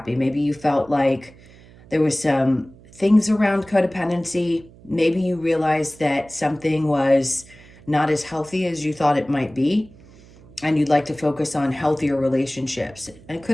Maybe you felt like there was some things around codependency. Maybe you realized that something was not as healthy as you thought it might be, and you'd like to focus on healthier relationships. And it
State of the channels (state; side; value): noise; right; hum, 23 dB below the sound